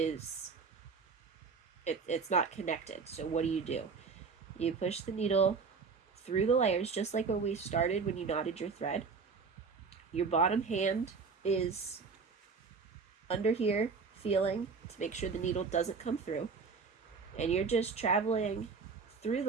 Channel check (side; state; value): left; quieter; 5.1 dB